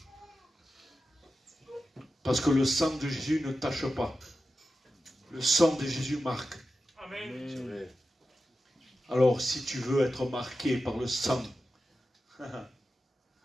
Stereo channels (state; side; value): normal; both; correlation 0.92